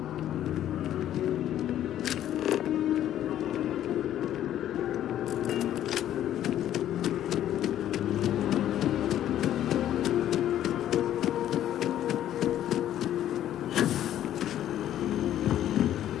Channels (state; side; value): quieter; right; 11.7 dB